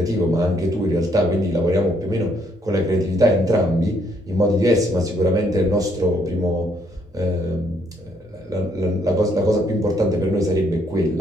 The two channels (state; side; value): normal; both; correlation 0.70